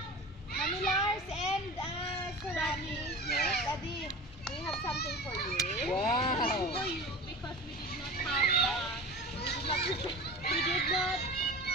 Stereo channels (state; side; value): normal; both; correlation 0.35